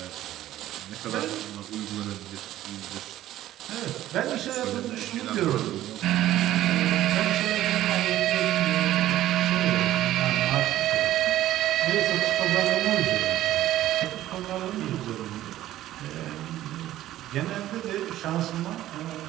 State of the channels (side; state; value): left; quieter; 13.8 dB